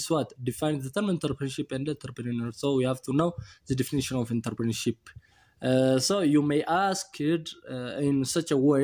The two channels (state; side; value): identical; both; correlation 1.00